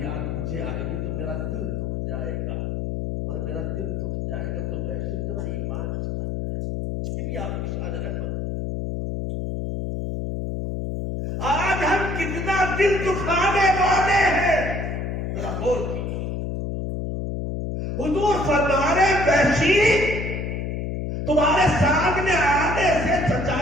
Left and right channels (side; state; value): left; noise; hum, 3 dB below the sound